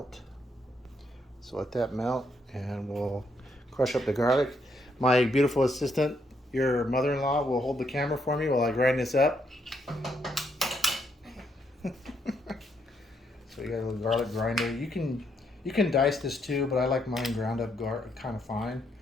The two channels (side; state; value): both; normal; correlation 0.75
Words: So let that melt and we'll crush up the garlic. My beautiful assistant, your mother-in-law, will hold the camera for me while I grind this up. So you got a little garlic grinder. You can dice this too, but I like mine ground up kind of fine.